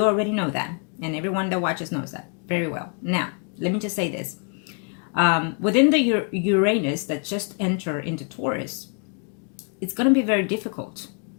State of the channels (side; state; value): right; quieter; 39.6 dB